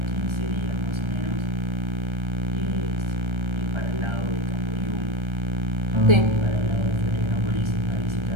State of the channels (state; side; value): late; left; 1.3 ms